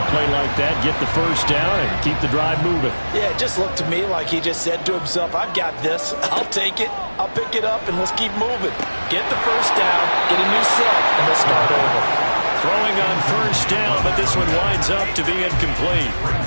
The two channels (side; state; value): both; inverted; correlation -1.00